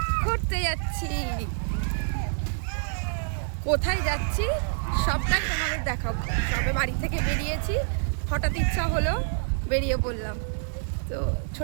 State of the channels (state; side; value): silent; left; digital silence